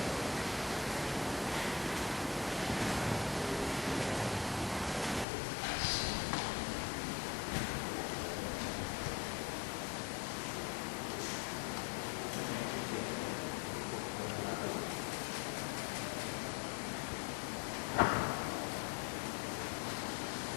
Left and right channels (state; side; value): drops out; right; at 5.2 s